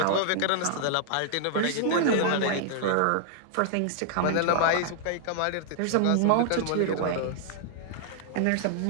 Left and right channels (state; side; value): different; both; correlation -0.01